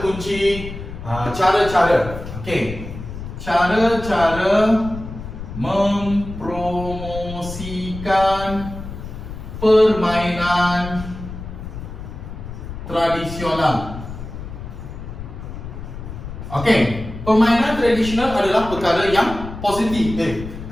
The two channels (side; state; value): left; noise; rumble, 10 dB below the sound